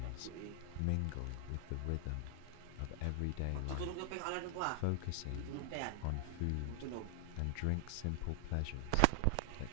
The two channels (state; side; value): different; both; correlation 0.00